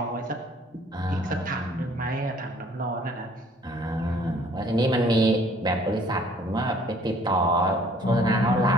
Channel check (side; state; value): both; normal; correlation 0.58